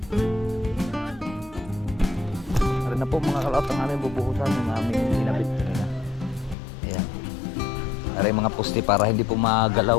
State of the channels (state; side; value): drops out; right; at 6.6 s